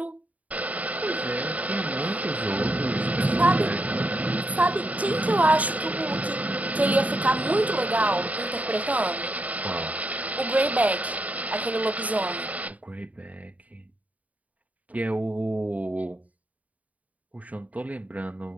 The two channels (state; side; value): late; left; 0.072 ms